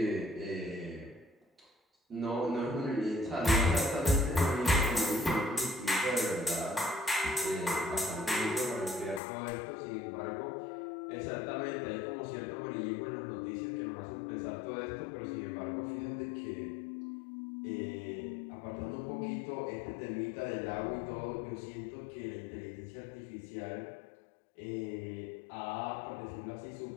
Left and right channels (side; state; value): right; drops out; at 9.2 s